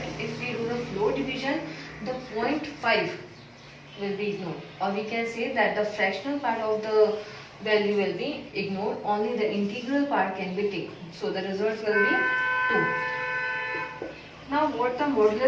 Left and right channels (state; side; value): identical; both; correlation 1.00